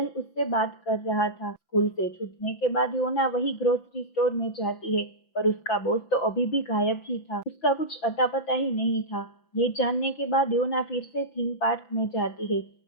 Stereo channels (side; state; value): right; late; 5.9 ms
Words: उससे बात कर रहा था। स्कूल से छूटने के बाद योना वही ग्रोसरी स्टोर में जाती है, पर उसका बॉस तो अभी भी गायब ही था। उसका कुछ अता पता ही नहीं था। ये जानने के बाद योना फिर से थीम पार्क में जाती है।